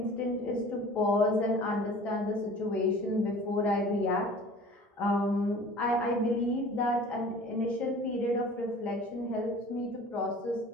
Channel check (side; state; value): both; normal; correlation 0.44